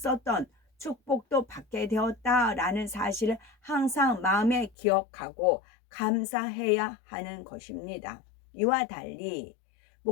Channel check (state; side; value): drops out; right; at 4.8 s